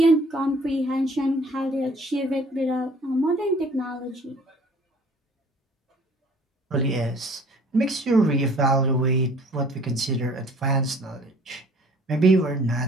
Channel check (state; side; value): normal; both; correlation 0.53